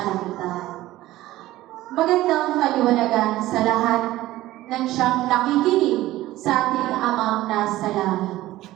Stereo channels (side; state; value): left; quieter; 16.1 dB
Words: Magandang kaliwanagan sa lahat ng siyang nakikinig sa ating Amang nasa langit.